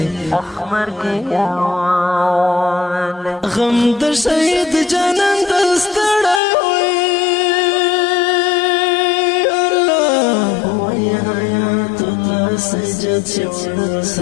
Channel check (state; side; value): drops out; right; at 6.4 s